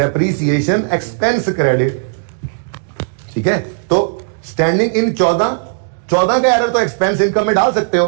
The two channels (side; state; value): left; silent; digital silence